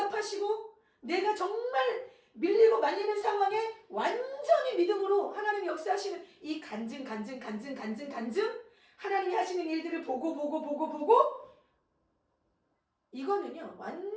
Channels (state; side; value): identical; both; correlation 1.00